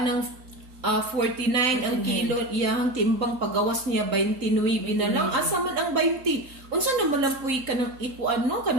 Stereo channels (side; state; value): left; late; 3.8 ms